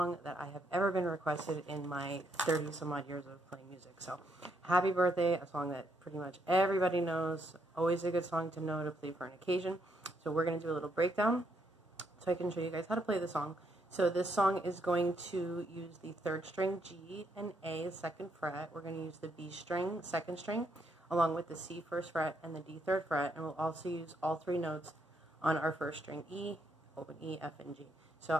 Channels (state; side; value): normal; both; correlation 0.75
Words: that I have ever been requested in my 30 some odd years of playing music. So happy birthday, a song that pretty much everybody knows, always a good song to know to play for an occasion. So we're going to do a little breakdown so I can show you guys how to play the song. So this song is going to use the 3rd string G and A 2nd fret. We're going to use the B string 2nd string along with the C 1st fret and the D 3rd fret, and we'll also use all 3 notes on our 1st string E, open E, F, and G. So